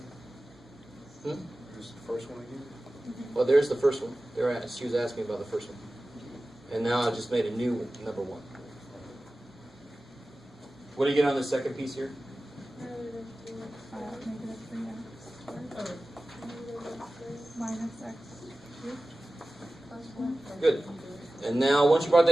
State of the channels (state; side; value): normal; both; correlation 0.96